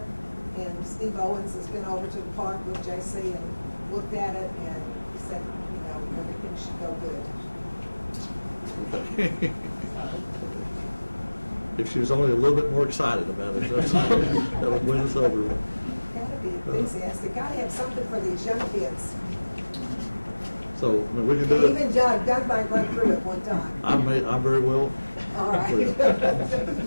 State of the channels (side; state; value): both; inverted; correlation -1.00